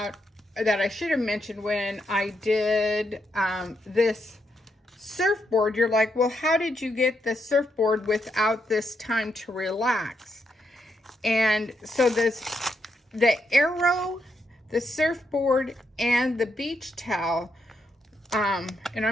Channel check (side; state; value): both; normal; correlation 0.80